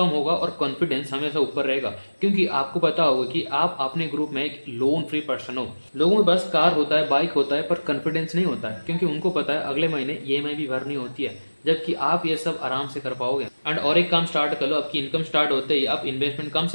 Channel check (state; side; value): inverted; both; correlation -1.00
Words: होगा और कॉन्फिडेंस हमेशा ऊपर रहेगा, क्योंकि आपको पता होगा कि आप अपने ग्रुप में एक लोन फ्री पर्सन हो। लोगों के पास कार होता है, बाइक होता है, पर कॉन्फिडेंस नहीं होता है, क्योंकि उनको पता है अगले महीने ईएमआई भी भरनी होती है, जबकि आप ये सब आराम से कर पाओगे। एंड और एक काम स्टार्ट कर लो, आपकी इनकम स्टार्ट होते ही आप इन्वेस्टमेंट कम